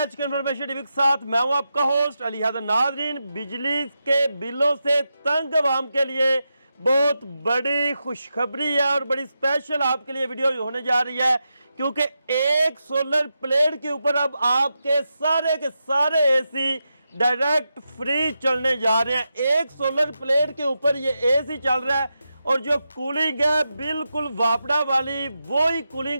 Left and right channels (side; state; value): both; inverted; correlation -0.88